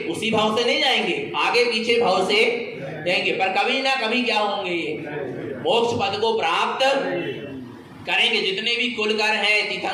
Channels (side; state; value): both; identical; correlation 1.00